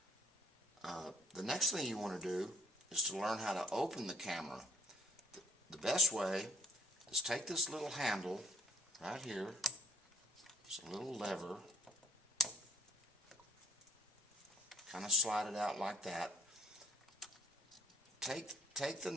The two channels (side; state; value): both; normal; correlation 0.60